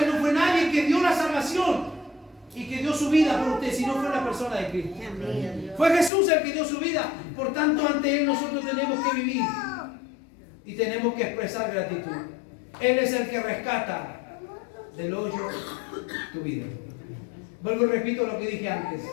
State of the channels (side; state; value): right; drops out; at 6.1 s